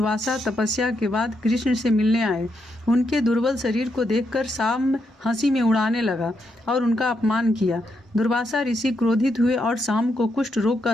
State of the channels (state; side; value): normal; both; correlation 0.80